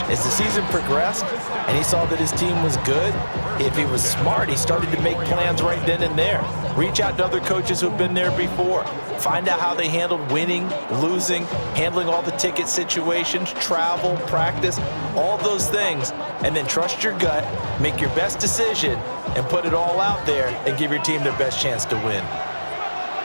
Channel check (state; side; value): inverted; both; correlation -1.00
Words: As the season progressed and he saw that his team was good, if he was smart, he started to make plans right then and there. Reach out to other coaches who've been there before. Find out how they handled winning, losing, handling all the ticket situations, travel, practice, all those things. And then trust your gut, make your best decision, and put it all out there and give your team their best chance to win.